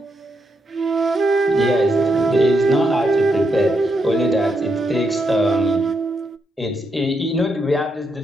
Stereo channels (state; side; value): normal; both; correlation 0.81